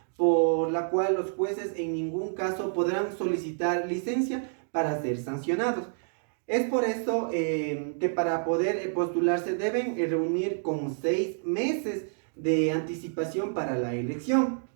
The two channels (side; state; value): left; silent; digital silence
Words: por la cual los jueces en ningún caso podrán solicitar licencia para ser sancionados. Es por eso que para poder postularse deben reunir con 6 meses de anticipación para la elección.